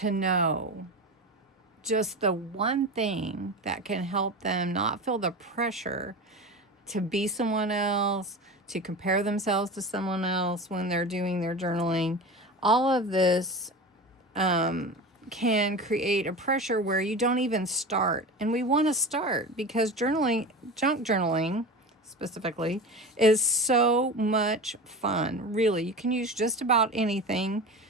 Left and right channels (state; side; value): normal; both; correlation 0.29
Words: know just the one thing that can help them not feel the pressure to be someone else, to compare themselves to someone else when they're doing their journaling. All of this can create a pressure where you don't even start. And we want to start because journaling, junk journaling specifically, is so much fun. Really, you can use just about anything